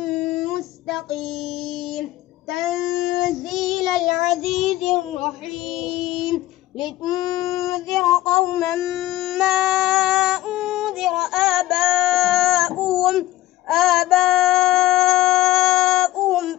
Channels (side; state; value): right; quieter; 15.8 dB